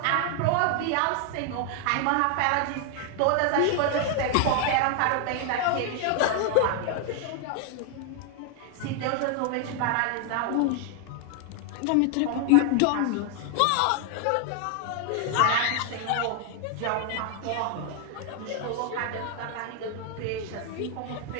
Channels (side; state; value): both; different; correlation 0.00